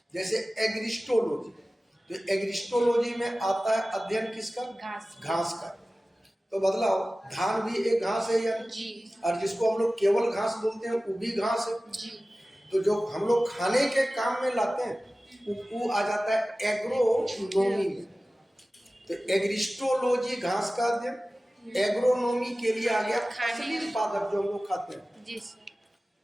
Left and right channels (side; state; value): both; normal; correlation 0.96